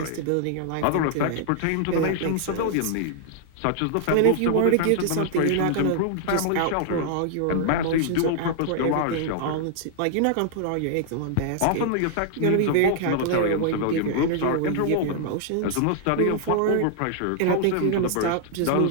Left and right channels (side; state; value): both; different; correlation -0.01